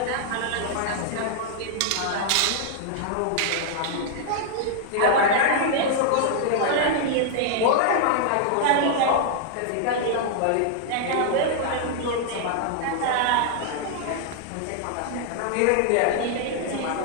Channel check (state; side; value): different; both; correlation -0.01